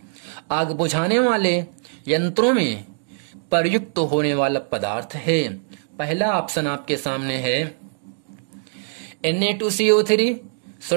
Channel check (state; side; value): silent; left; digital silence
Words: आग बुझाने वाले यंत्रों में प्रयुक्त होने वाला पदार्थ है। पहला ऑप्शन आपके सामने है Na2CO3